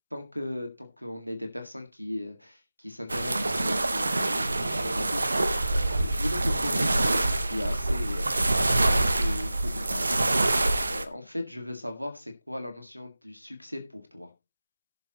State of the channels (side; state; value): both; inverted; correlation -0.96